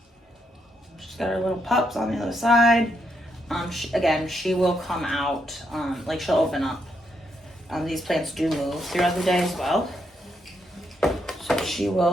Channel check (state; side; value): normal; both; correlation 0.78